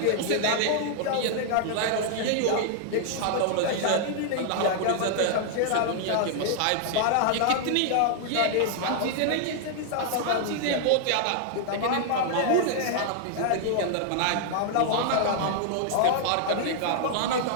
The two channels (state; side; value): different; both; correlation -0.01